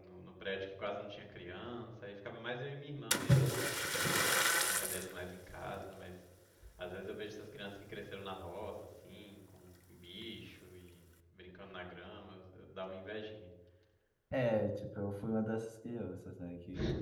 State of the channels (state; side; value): identical; both; correlation 1.00